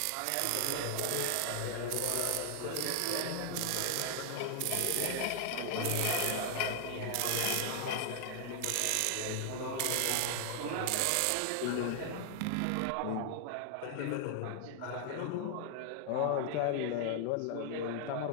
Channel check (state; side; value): different; both; correlation 0.00